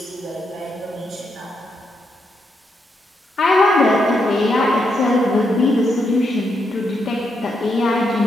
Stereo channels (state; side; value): normal; both; correlation 0.80